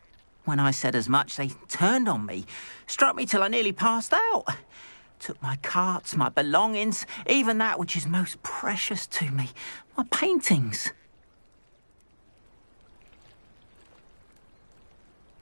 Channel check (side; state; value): both; inverted; correlation -1.00